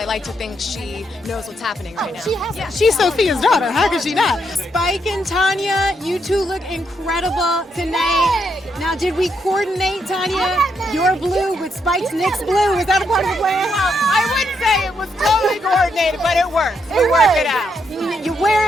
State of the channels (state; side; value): normal; both; correlation 0.78